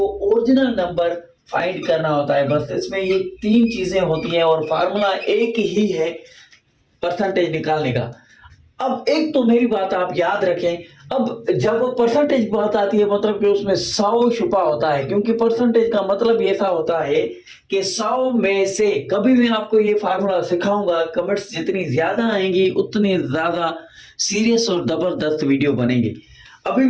ओरिजिनल नंबर फाइंड करना होता है। बस इसमें ये तीन चीजें होती हैं और फार्मूला एक ही है परसेंटेज निकालने का। अब एक तो मेरी बात आप याद रखें, अब जब परसेंटेज की बात आती है मतलब कि उसमें 100 छुपा होता है, क्योंकि परसेंटेज का मतलब ऐसा होता है कि 100 में से कभी मैं आपको ये फार्मूला सिखाऊंगा, कमेंट्स जितनी ज्यादा आएंगी उतनी ज्यादा सीरियस और जबरदस्त वीडियो बनेगी। अभी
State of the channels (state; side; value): identical; both; correlation 1.00